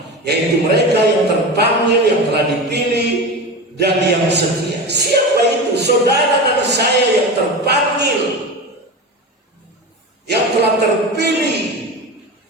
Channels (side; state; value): both; normal; correlation 0.26